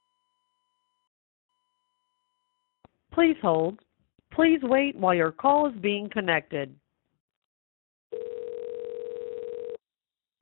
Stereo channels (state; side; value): silent; right; 58 dB below the other